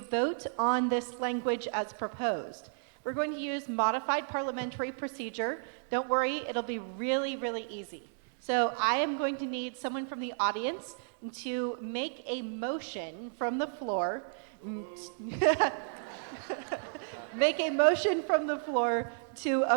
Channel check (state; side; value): silent; left; digital silence